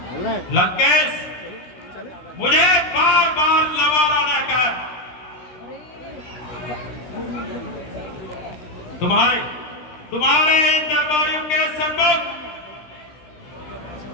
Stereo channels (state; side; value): late; right; 17 ms